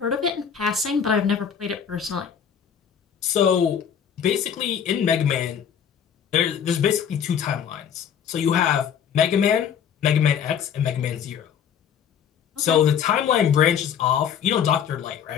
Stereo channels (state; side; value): quieter; right; 8.1 dB